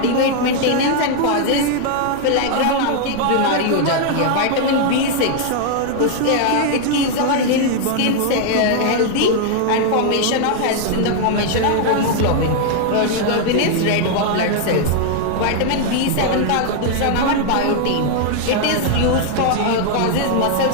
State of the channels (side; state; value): both; different; correlation 0.00